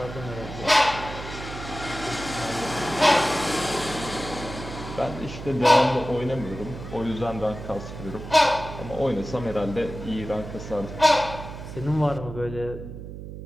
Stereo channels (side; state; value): right; noise; hum, 10 dB below the sound